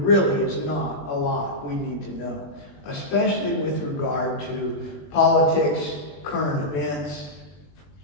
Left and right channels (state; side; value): late; right; 21 ms